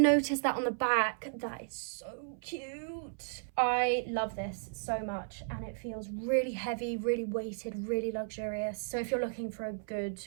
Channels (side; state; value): left; silent; 55 dB below the other